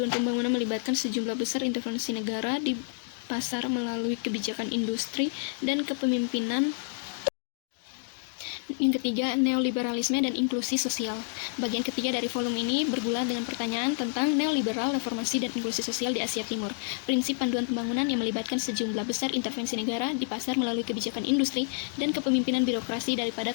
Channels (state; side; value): silent; right; 59 dB below the other